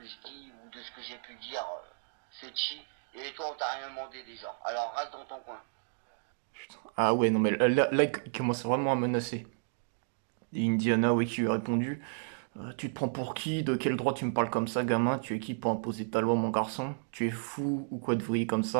je dis ou de ce que j'ai pu dire, c'est chi. Et toi, on t'a rien demandé déjà. Alors reste dans ton coin. Ah ouais, non mais là, il commence vraiment à menacer. Et Indiana, oui, qui lui a répondu tu te prends pour qui? De quel droit tu me parles comme ça, gamin? Tu es qui pour imposer ta loi, mon garçon? Tu es fou ou quoi de vrille comme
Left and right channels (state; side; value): silent; left; digital silence